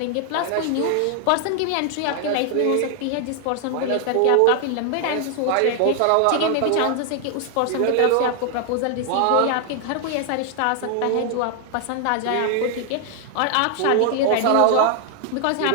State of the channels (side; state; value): both; different; correlation 0.00